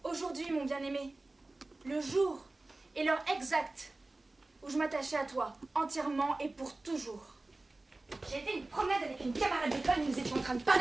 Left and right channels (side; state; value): left; quieter; 3.0 dB